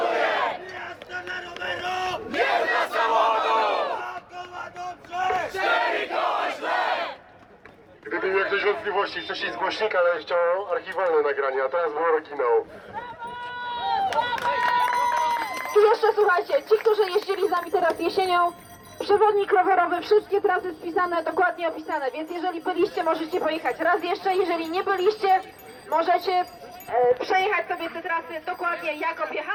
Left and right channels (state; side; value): identical; both; correlation 1.00